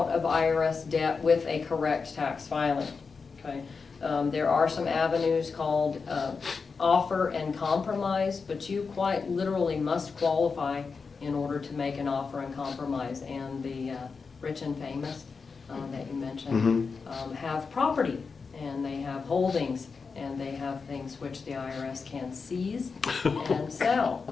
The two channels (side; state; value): right; quieter; 5.0 dB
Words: of IRS debt with a correct tax filing. Okay? There are some avenues called offer and compromise, but you quite literally must qualify in order to make an offer and compromise. And the rich and famous that you mentioned have property, and they have holdings, and they have things which the IRS can seize and